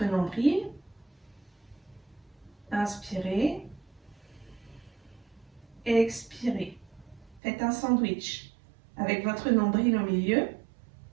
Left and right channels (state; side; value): drops out; left; at 7.4 s